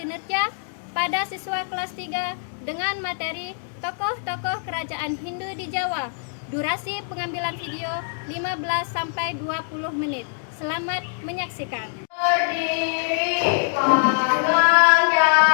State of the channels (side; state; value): right; silent; digital silence